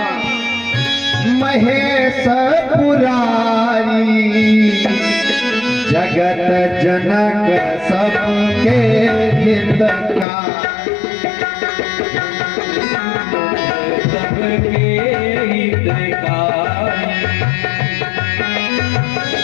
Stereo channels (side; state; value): right; drops out; at 10.2 s